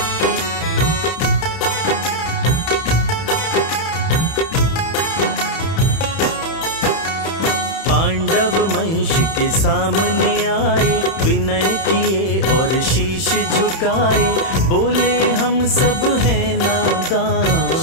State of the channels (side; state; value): right; late; 31 ms